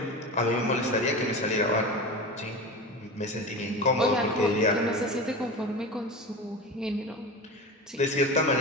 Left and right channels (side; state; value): both; normal; correlation 0.28